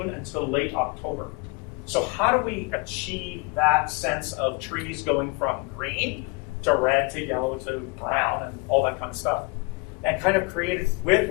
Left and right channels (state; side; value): quieter; right; 29.8 dB